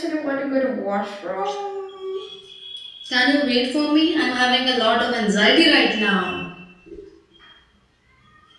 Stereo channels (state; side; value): identical; both; correlation 1.00